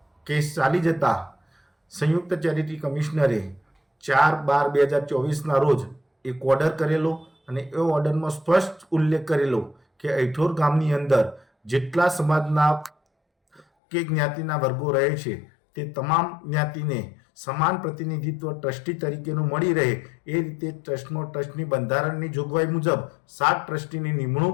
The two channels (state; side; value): drops out; right; at 13.7 s